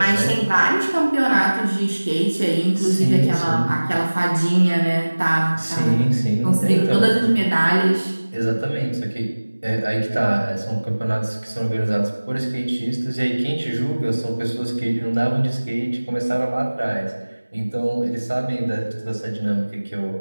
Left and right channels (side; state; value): both; inverted; correlation -1.00